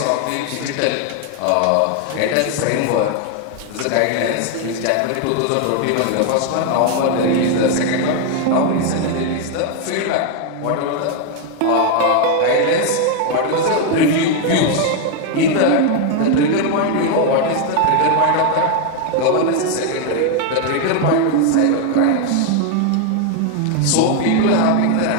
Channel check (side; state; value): both; different; correlation 0.01